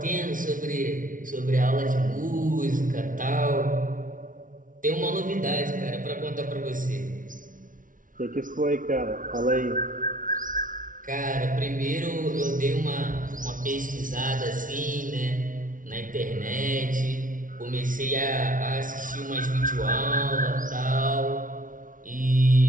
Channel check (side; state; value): left; late; 0.38 ms